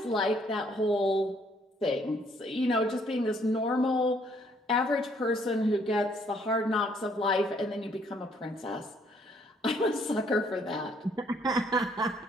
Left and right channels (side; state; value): both; normal; correlation 0.66